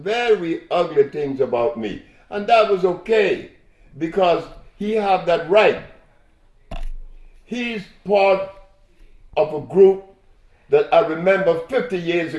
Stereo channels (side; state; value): both; identical; correlation 1.00